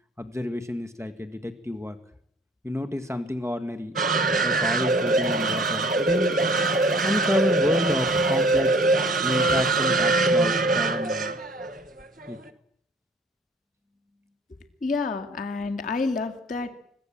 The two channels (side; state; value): both; normal; correlation 0.53